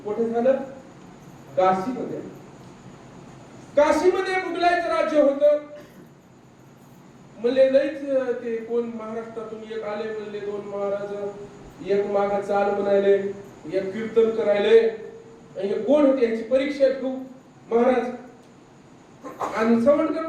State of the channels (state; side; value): identical; both; correlation 1.00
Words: कुठे झालं? काशीमध्ये. काशीमध्ये मुघलांचं राज्य होतं. म्हणले लईच ते कोण महाराष्ट्रातून एक आले, म्हणले दोन महाराज, एक माग चाल म्हणायले, एक कीर्तन करायले. आणि कोण होते याची परीक्षा घेऊ महाराज. आणि सवणकर